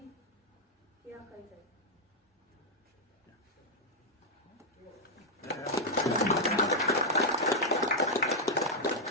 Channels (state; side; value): normal; both; correlation -0.02